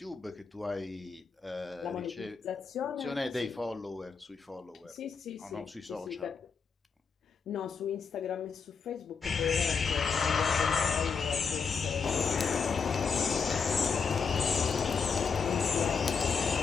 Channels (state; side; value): quieter; right; 5.6 dB